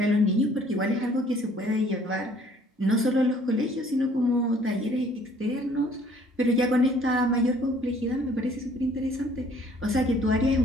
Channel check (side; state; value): both; normal; correlation 0.58